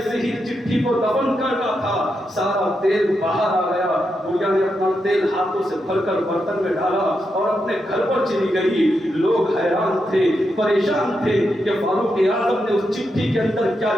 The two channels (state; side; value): normal; both; correlation 0.85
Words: ہی چٹھی کو دفن کرنا تھا سارا تیل باہر آ گیا. بڑھیا نے اپنا تیل ہاتھوں سے بھر کر برتن میں ڈالا اور اپنے گھر پر چلی گئی. لوگ حیران تھے, پریشان تھے کہ فاروق اعظم نے اس چٹھی کے اندر کیا